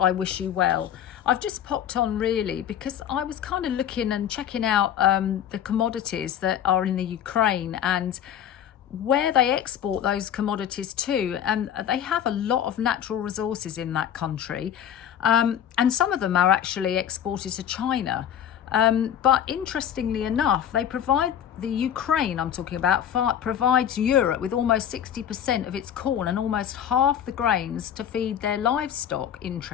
wish you well. I've just popped on really because I was kind of looking and checking out the commodities that are in the Ukraine and where they export those commodities to, and they have a lot of natural resources in that country, and some of them are actually exported to China, but interestingly enough the Ukraine I'm talking about provides Europe with almost 60% of its corn and almost half the grains to feed their livestock.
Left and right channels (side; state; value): right; quieter; 9.6 dB